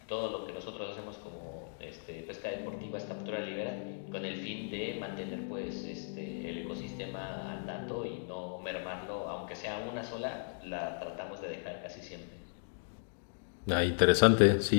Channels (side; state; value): right; silent; digital silence